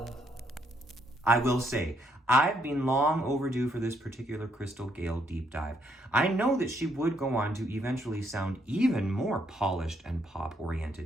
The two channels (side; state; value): both; normal; correlation 0.73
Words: I will say, I've been long overdue for this particular Crystal Gayle deep dive. I know that she would go on to eventually sound even more polished and